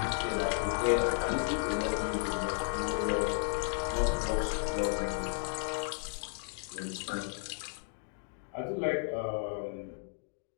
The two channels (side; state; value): right; silent; digital silence